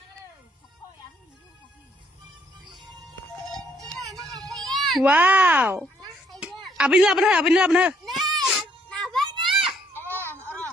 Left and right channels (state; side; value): normal; both; correlation 0.68